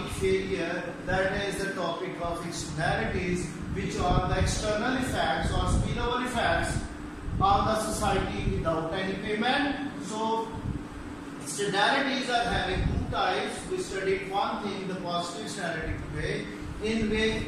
failure, that is the topic of externalities, which are the external effects or spillover effects on the society without any payment. So externalities are having two types. We studied one thing, the positive externality today, in which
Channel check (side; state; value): both; identical; correlation 1.00